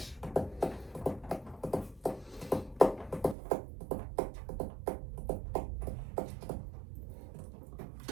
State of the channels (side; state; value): left; drops out; at 3.4 s